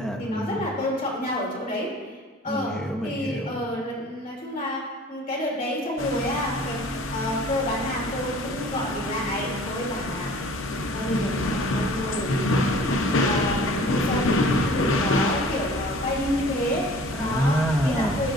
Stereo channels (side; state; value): both; normal; correlation 0.47